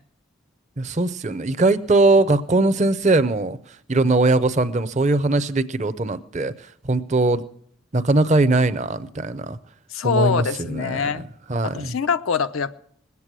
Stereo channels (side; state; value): both; normal; correlation 0.47